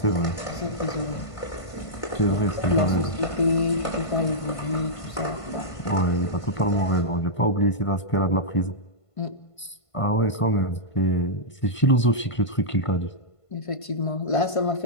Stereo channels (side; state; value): right; late; 1.5 ms